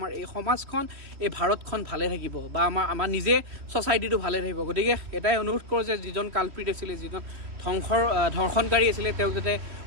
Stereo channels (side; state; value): left; late; 3.3 ms